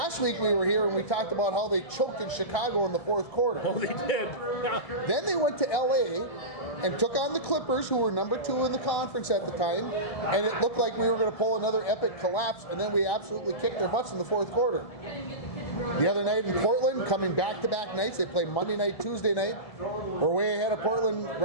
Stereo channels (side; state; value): right; late; 1.7 ms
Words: week we were here and we talked about how they choked in Chicago in the 4th quarter. Oh, they did. Yeah. Then they went to LA and took on the Clippers, who were number 2 in the conference at the time, and it looked like we were going to pull another epic collapse, and then we absolutely kicked their butts in the 4th quarter. the other night in Portland, coming back-to-back nights. They play Monday night, Tuesday night. We're way ahead of Portland